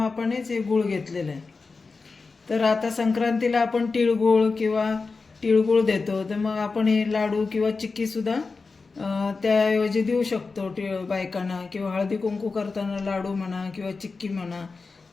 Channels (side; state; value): right; quieter; 4.2 dB